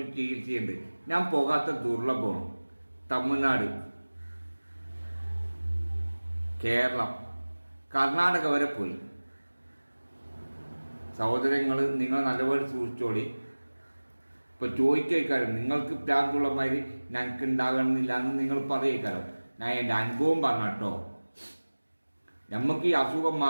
ചികിത്സയുണ്ട്. ഞാൻ പോകാത്ത ദുർലഭമാണ്. തമിഴ്നാട്, കേരളം, കർണാടക വരെ പോയി. സഹോദരങ്ങൾ, നിങ്ങൾ നല്ലപോലെ സൂക്ഷിച്ചോളി. ഇപ്പൊ ചോദിക്കാരം നിങ്ങൾക്ക് പ്രാന്തുള്ള മാതിരി ഞങ്ങൾക്ക് ഉണ്ടാകണമെന്നില്ല എന്ന് നിങ്ങൾ പറയേക്കാരം. ഞാൻ എൻ്റെ അനുഭവം പറഞ്ഞോ. നമുക്ക് ഈ അസുഖം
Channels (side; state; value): both; inverted; correlation -1.00